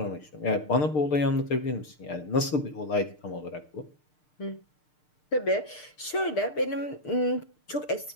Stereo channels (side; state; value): right; late; 6.6 ms